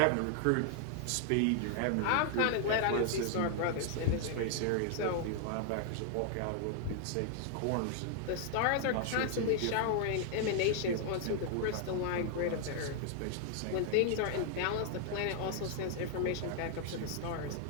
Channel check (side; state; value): both; different; correlation 0.00